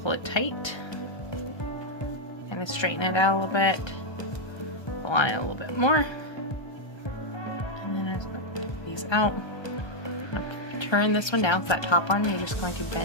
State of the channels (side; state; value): right; late; 1.3 ms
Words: it tight, kind of straighten it out a little bit, pull on it a little bit more, and then as I get these out, turn this one down. So that top one, you're just going to